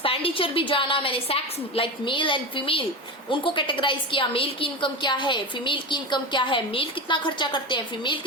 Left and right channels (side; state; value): both; normal; correlation 0.23